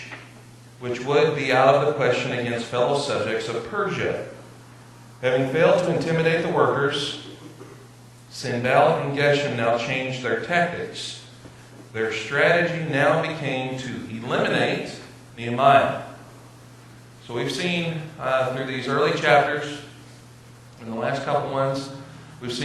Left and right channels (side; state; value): both; identical; correlation 1.00